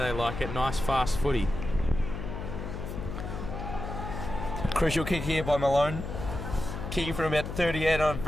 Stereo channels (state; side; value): noise; left; hum, 6 dB below the sound